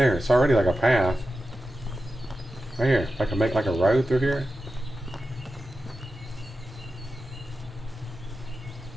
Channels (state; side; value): normal; both; correlation 0.92